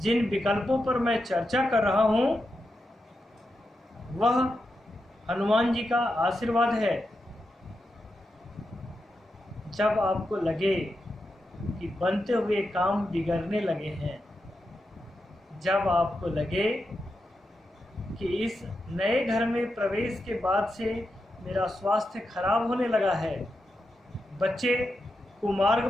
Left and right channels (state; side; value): normal; both; correlation 0.87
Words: विकल्पों पर मैं चर्चा कर रहा हूं, वह हनुमान जी का आशीर्वाद है। जब आपको लगे कि बनते हुए काम बिगड़ने लगे हैं, जब आपको लगे कि इस नए घर में प्रवेश के बाद से मेरा स्वास्थ्य खराब होने लगा है, बच्चे कुमार्ग